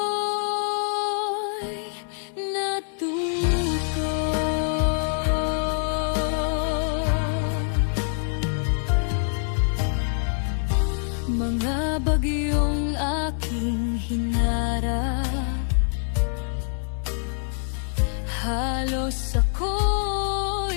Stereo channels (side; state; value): right; silent; digital silence